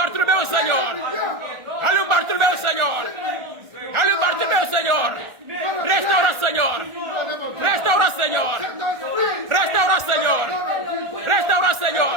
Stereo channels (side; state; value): left; late; 1.4 ms